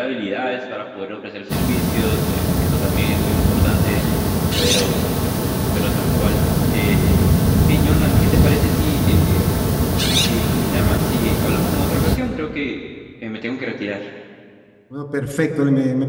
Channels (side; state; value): both; identical; correlation 1.00